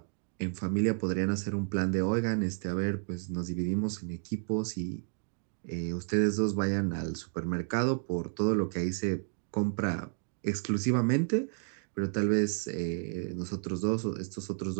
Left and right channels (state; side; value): silent; left; 57 dB below the other